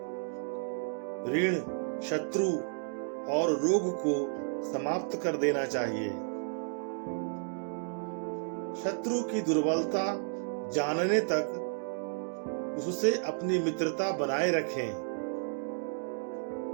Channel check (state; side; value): silent; left; 56 dB below the other